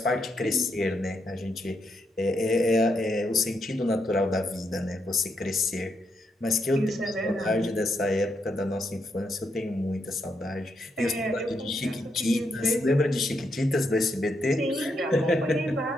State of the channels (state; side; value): normal; both; correlation 0.80